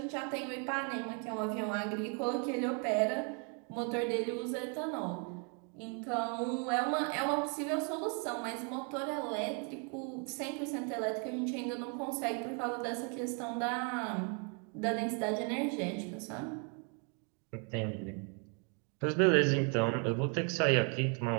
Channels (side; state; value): left; quieter; 37.8 dB